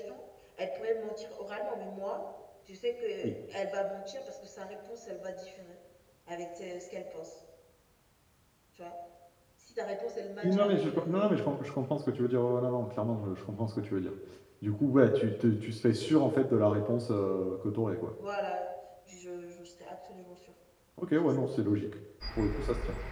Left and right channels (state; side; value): identical; both; correlation 1.00